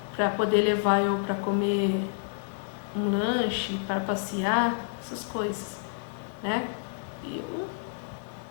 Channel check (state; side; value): silent; right; 58 dB below the other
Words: Para poder levar eu para comer um lanche, para passear, essas coisas, né? E eu,